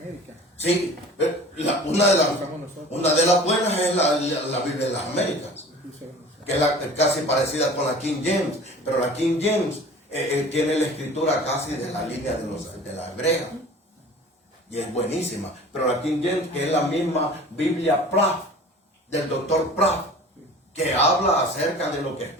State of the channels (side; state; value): both; normal; correlation 0.43